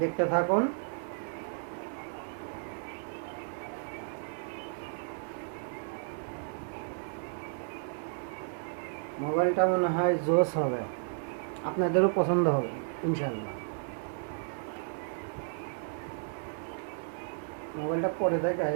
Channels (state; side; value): silent; left; digital silence